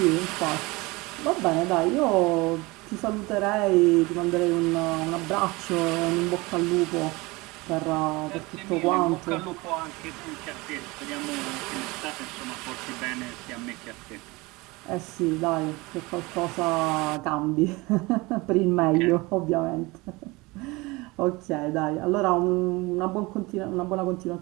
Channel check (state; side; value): quieter; left; 23.4 dB